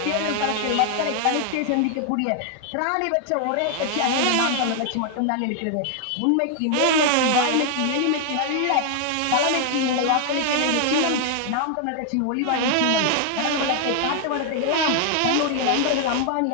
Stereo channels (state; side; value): different; both; correlation 0.00